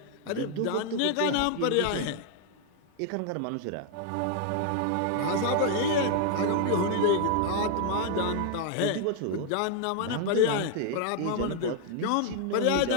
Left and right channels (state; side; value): different; both; correlation 0.00